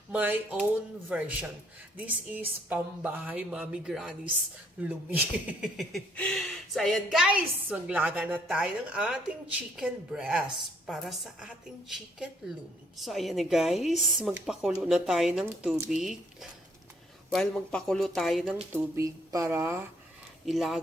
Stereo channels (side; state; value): both; normal; correlation 0.67